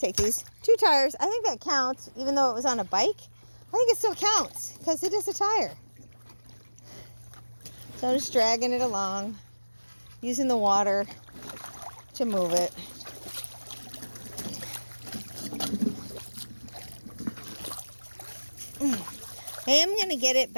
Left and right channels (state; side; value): inverted; both; correlation -1.00